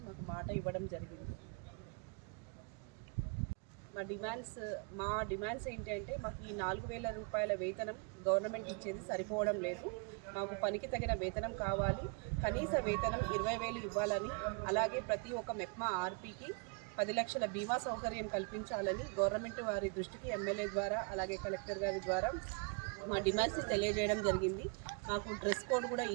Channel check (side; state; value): left; quieter; 35.2 dB